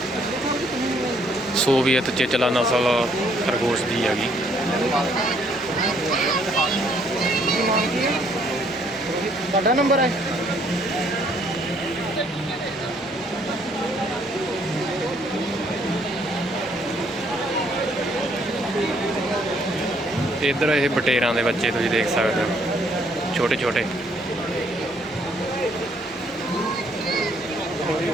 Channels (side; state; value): both; normal; correlation 0.66